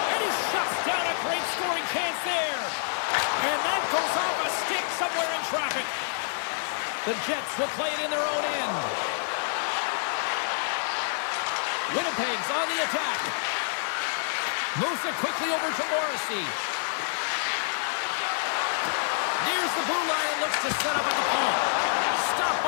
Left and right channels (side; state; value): right; silent; 60 dB below the other